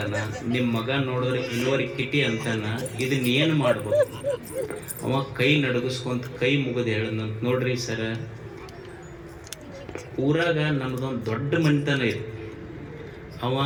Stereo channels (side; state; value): both; identical; correlation 1.00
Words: ನಿಮ್ಮ ಮಗ ನೋಡಿದ್ರೆ ಇನ್ವರ್ಕಿಟಿ ಅಂತಾನ. ಇದನ್ನ ಏನು ಮಾಡ್ಬೇಕು? ಅವ ಕೈ ನಡಗಿಸ್ಕೊಂತ ಕೈ ಮುಗಿದು ಹೇಳದಂತ, ನೋಡ್ರಿ ಸರ, ಊರಾಗ ನಮ್ದೊಂದು ದೊಡ್ಡ ಮನಿತನ ಇದೆ. ಅವ